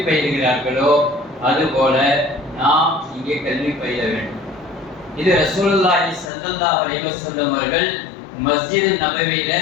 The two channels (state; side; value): drops out; right; at 6.3 s